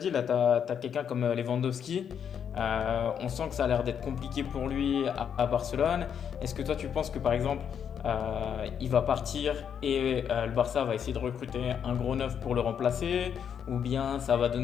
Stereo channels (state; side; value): quieter; right; 8.0 dB